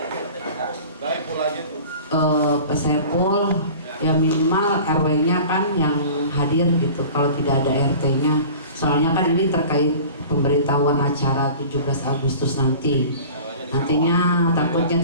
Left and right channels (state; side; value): inverted; both; correlation -0.41